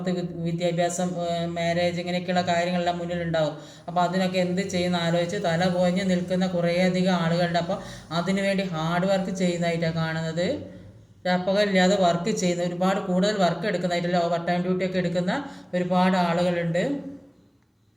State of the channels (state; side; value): identical; both; correlation 1.00